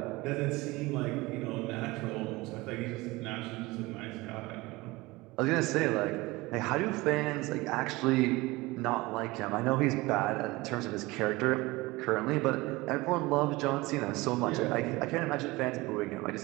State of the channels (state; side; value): quieter; left; 21.6 dB